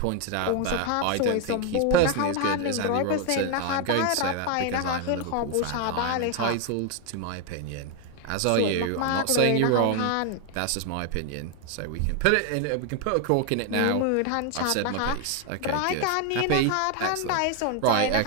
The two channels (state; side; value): different; both; correlation 0.01